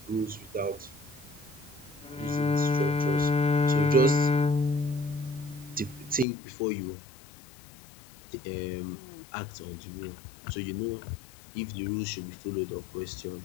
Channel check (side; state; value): right; drops out; at 6.2 s